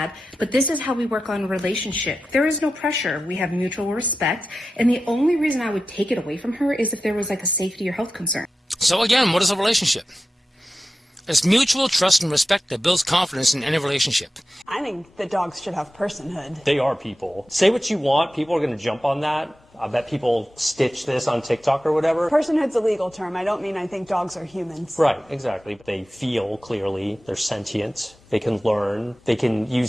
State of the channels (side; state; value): both; normal; correlation 0.92